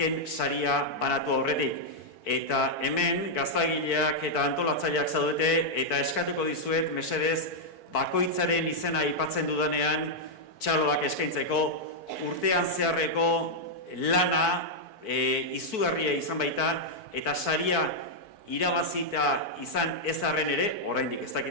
saria banatu aurretik. Eta hemen gaztagileak eta antolatzaileak zaudete, eta eskatuko dizuet, mesedez, bakoitzaren izena aipatzen dudanean, txaloak eskaintzeko, urtean zeharreko lana, izugarria izan baita, eta saria irabazita izan ez arren ere, oraindik ez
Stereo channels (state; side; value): late; right; 4.5 ms